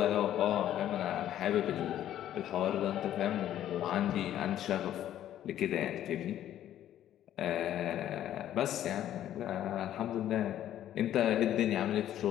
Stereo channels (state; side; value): quieter; right; 11.7 dB